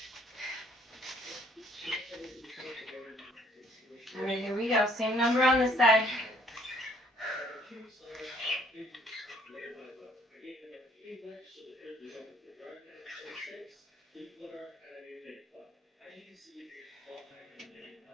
All right, here we go. Same number on this side.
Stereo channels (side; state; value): both; normal; correlation 0.62